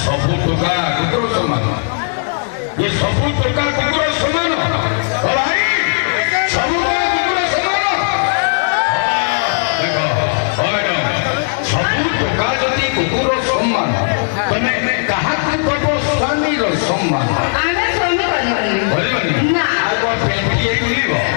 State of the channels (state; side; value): silent; right; digital silence